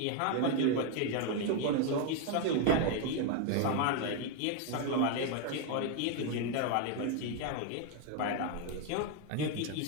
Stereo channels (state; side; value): different; both; correlation 0.01